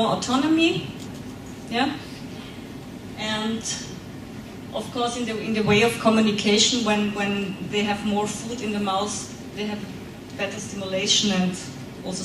autonomy, yeah, and of course in the way of communication, when they have more food in the mouth, they have better stimulation and also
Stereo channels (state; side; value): identical; both; correlation 1.00